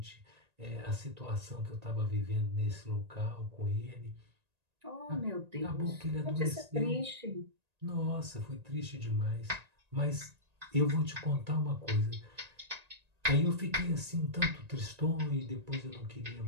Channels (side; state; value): left; late; 1.9 ms